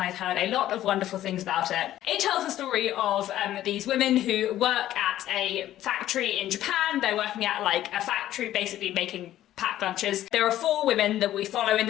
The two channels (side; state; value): right; quieter; 13.2 dB